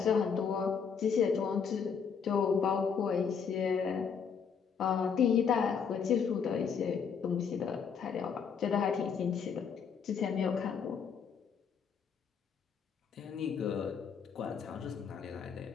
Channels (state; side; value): quieter; right; 6.6 dB